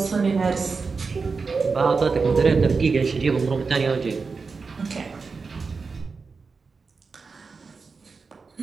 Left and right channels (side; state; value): left; quieter; 4.7 dB